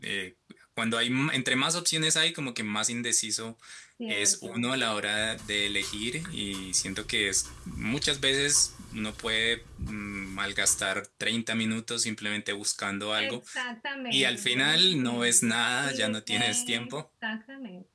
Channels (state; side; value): identical; both; correlation 1.00